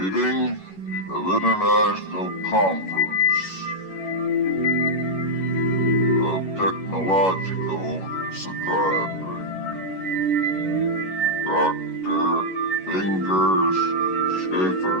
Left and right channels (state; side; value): late; right; 11 ms